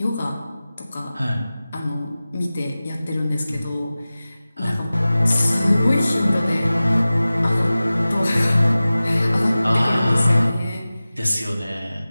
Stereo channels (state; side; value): inverted; both; correlation -0.97